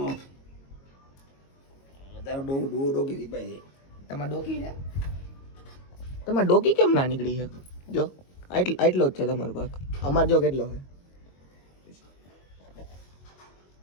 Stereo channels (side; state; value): right; late; 22 ms